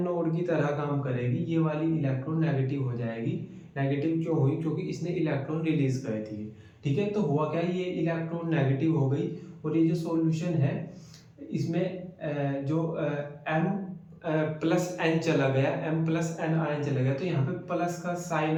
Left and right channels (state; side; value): identical; both; correlation 1.00